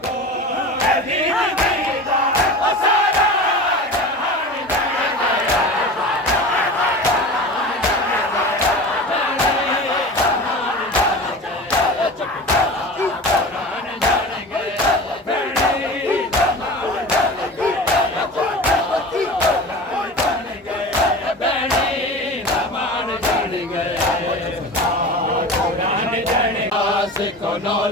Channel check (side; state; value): both; normal; correlation 0.33